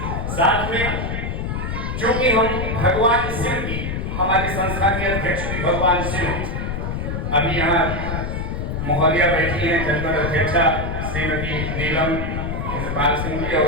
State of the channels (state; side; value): noise; left; rumble, 3 dB below the sound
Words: साथ में क्योंकि हम भगवान शिव की, हमारी संस्था के अध्यक्ष भी भगवान शिव, अभी यहाँ महोदया बैठी हैं, जनपद अध्यक्षा श्रीमती नीलम इंद्रपाल सिंह जी